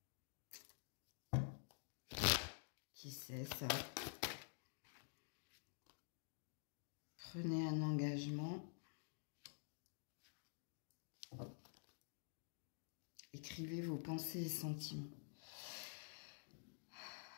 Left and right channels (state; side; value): silent; right; digital silence